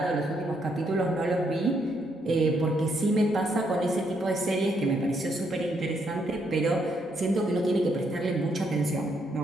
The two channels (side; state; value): both; normal; correlation 0.74